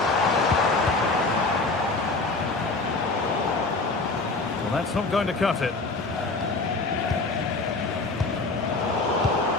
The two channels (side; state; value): right; quieter; 3.5 dB